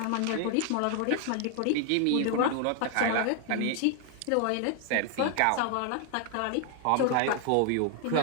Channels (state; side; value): different; both; correlation 0.00